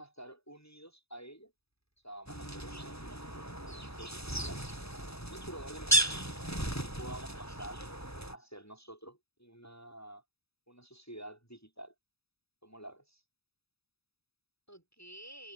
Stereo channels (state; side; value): late; right; 0.78 ms